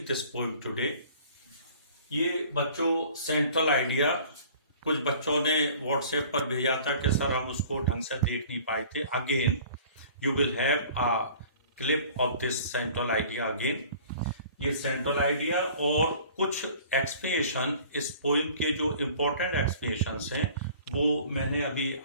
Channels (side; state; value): both; inverted; correlation -0.49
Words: this poem today. ये बच्चों सेंट्रल आइडिया कुछ बच्चों ने व्हाट्सएप पर भेजा था कि सर हम उसको ढंग से देख नहीं पाए थे। Again you will have a clip of this central idea again. ये सेंट्रल आइडिया और कुछ एक्सप्लेनेशन इस पोइम के जो इम्पोर्टेंट एक्सप्लेनेशंस हैं वो मैंने अभी